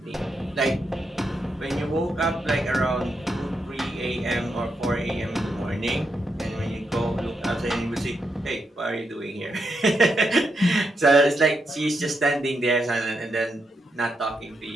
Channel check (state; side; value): normal; both; correlation 0.82